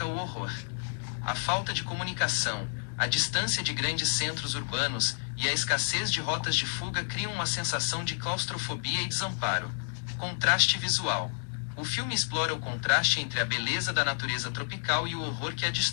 o horror. A falta de comunicação, a distância de grandes centros urbanos e a escassez de rotas de fuga criam uma sensação de claustrofobia e desamparo. Contraste visual. O filme explora o contraste entre a beleza da natureza tropical e o horror que a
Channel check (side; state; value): right; silent; digital silence